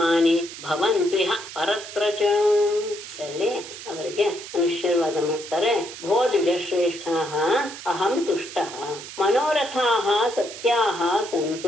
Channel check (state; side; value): noise; right; hiss, 12 dB below the sound